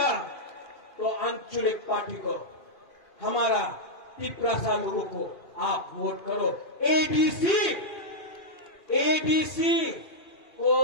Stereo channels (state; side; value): late; right; 2.7 ms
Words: तो आंचलिक पार्टी को, हमारा पिपरासा लोगों को आप वोट करो। एडीसी को